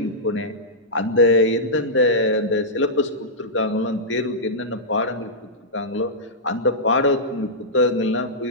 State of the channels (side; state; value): both; normal; correlation -0.12